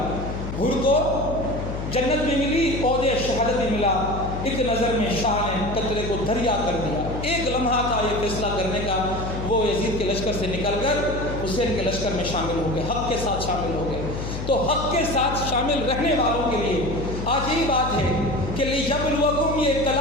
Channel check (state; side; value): noise; left; hum, 6 dB below the sound